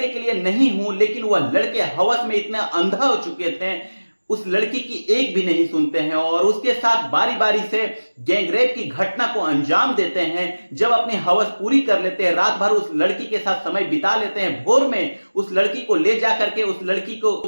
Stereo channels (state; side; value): inverted; both; correlation -1.00